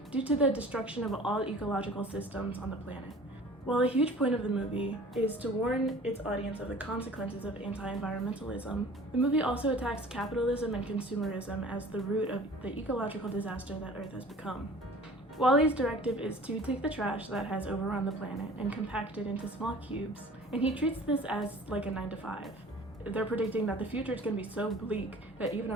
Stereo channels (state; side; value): normal; both; correlation 0.46